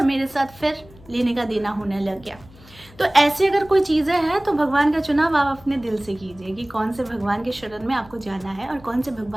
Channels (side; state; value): left; noise; hum, 23 dB below the sound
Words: मेरे साथ फिर लेने का देना होने लग गया। तो ऐसे अगर कोई चीज़ें हैं तो भगवान का चुनाव आप अपने दिल से कीजिए कि कौन से भगवान के शरण में आपको जाना है और कौन से